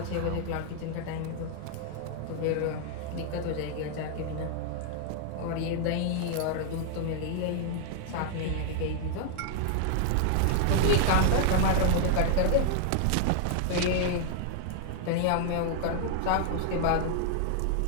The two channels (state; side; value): different; both; correlation 0.00